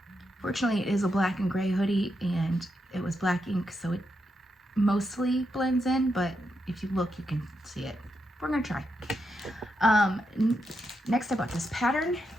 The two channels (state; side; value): normal; both; correlation 0.84